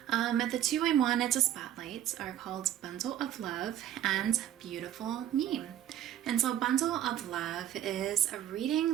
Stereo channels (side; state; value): left; quieter; 11.2 dB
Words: The two I wanted to spotlight are called Bundle of Love and Beautiful Me. And so Bundle of Love is a